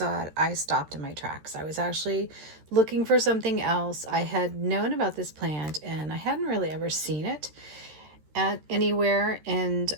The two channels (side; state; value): left; late; 13 ms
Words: it, I stopped in my tracks. I was actually looking for something else. I had known about this plant and I hadn't really ever seen it at anywhere, and